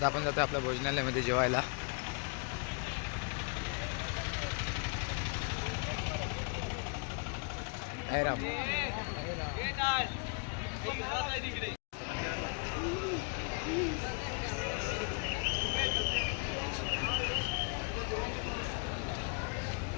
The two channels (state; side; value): quieter; right; 37.2 dB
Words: आपण जातोय आपल्या भोजनालयामध्ये जेवायला.